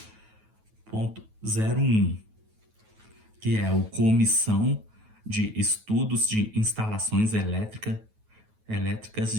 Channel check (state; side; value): late; left; 9.3 ms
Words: que é o Comissão de Estudos de Instalações Elétricas